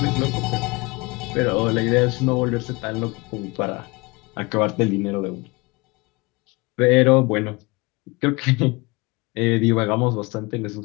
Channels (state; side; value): quieter; right; 25.5 dB